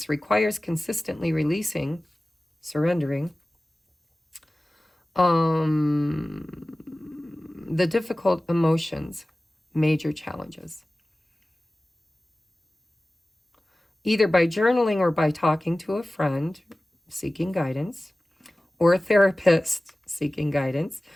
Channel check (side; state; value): both; normal; correlation 0.97